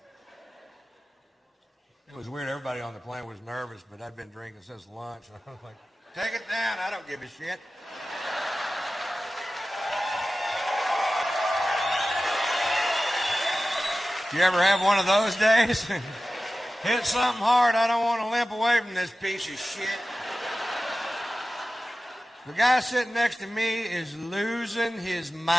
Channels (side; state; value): both; normal; correlation 0.95